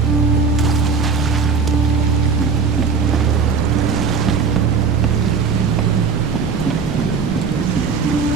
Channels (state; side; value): quieter; left; 5.4 dB